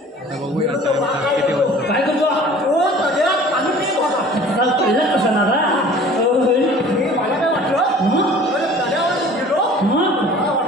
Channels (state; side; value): normal; both; correlation 0.47